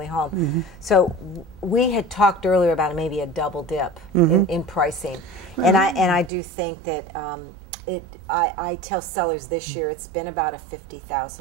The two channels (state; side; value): drops out; left; at 6.3 s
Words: home. So we had talked earlier about maybe a double dip in pricing. And I do think that I tell sellers this year it's been about a